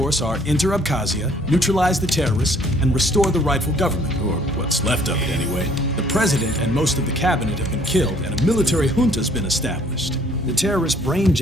are enter Abkhazia, neutralize the terrorists, and restore the rightful government, or what's left of it anyway. The president and most of the cabinet have been killed, and a military junta's been established. The terrorists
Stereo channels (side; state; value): both; normal; correlation 0.60